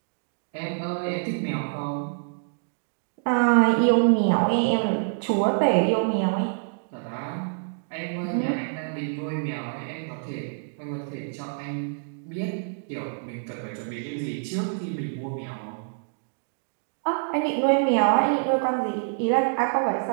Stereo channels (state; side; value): silent; left; digital silence